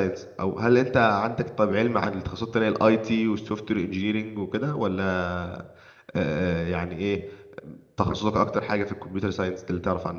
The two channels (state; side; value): identical; both; correlation 1.00